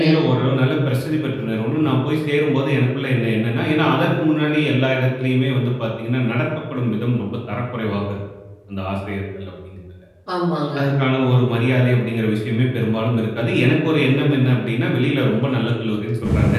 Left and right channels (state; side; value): identical; both; correlation 1.00